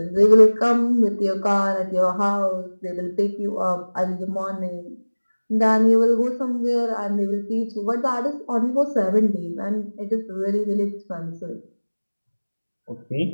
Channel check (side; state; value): both; inverted; correlation -1.00